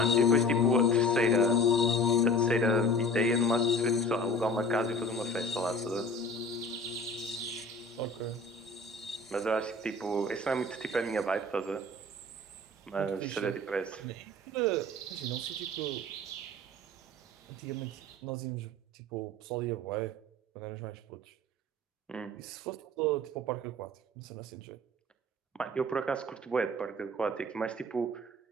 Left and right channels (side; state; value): both; normal; correlation 0.43